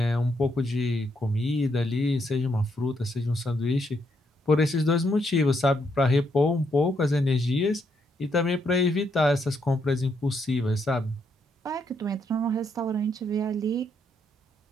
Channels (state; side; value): normal; both; correlation 0.76